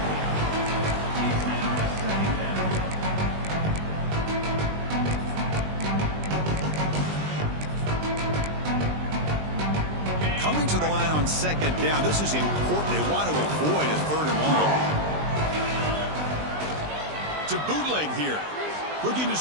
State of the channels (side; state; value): left; late; 20 ms